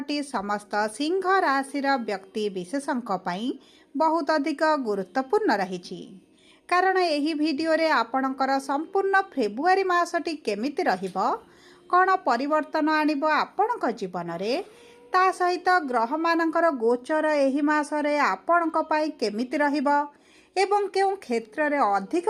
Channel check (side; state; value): both; identical; correlation 1.00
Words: समस्त सिंह राशि व्यक्ति विशेषों बहुत अधिक गुरुत्वपूर्ण रही कारण यही वीडियो रे आपणकर संपूर्ण फेब्रुआरी मासटी केमिति रहिबो कौन परिवर्तन आणिब आपणक जीवन रे ता सहित ग्रह मानकर गोचर एही मासरे आपणक पई केमिति रहिबो एवं केउं क्षेत्र रे अधिक